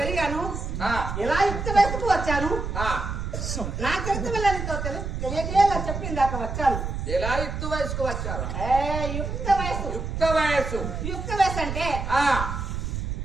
ఎలా యుక్త వయసుకు వచ్చాను, నా చరిత్ర వెళ్ళనితో తెలియజేయాల చెప్పింది దాకా వచ్చాను. ఎలా యుక్త వయసుకు వచ్చారు? యుక్త వయసు. యుక్త వయసు. యుక్త వయసు అంటే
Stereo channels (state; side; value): noise; right; rumble, 4 dB below the sound